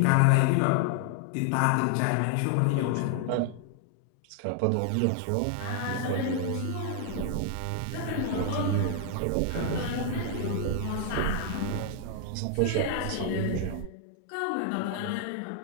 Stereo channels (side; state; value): both; different; correlation 0.00